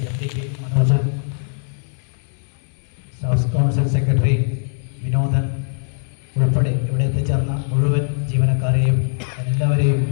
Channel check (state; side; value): silent; right; digital silence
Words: MD Manojan, staff council secretary Vinodan ഉൾപ്പെടെ ഇവിടെ എത്തിച്ചേർന്ന മുഴുവൻ ജീവനക്കാരെയും എല്ലാവരെയും